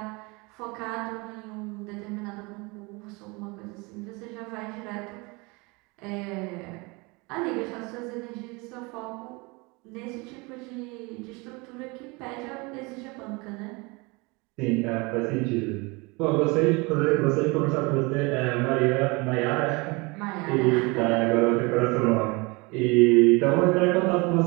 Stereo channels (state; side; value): quieter; left; 26.8 dB